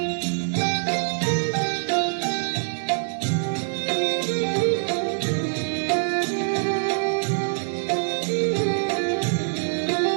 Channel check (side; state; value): left; silent; 62 dB below the other